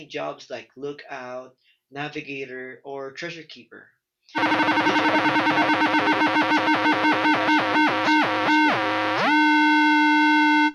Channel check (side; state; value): both; identical; correlation 1.00